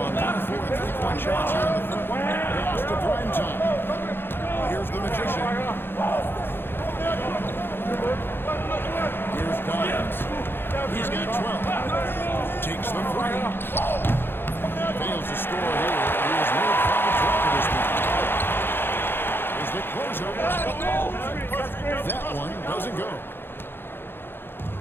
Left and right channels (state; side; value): late; right; 0.10 ms